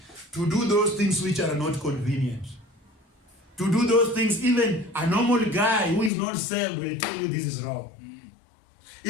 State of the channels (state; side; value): drops out; right; at 6.1 s